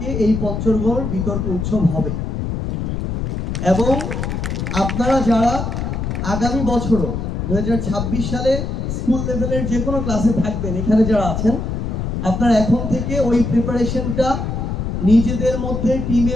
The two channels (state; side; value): noise; left; rumble, 3 dB below the sound